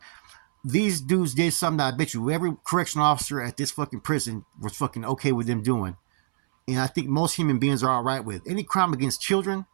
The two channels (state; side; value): silent; left; 61 dB below the other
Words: these dudes did something that I bet you every correctional officer at this fucking prison was fucking okay with them doing. And I think most human beings are all right with. Any crime against children,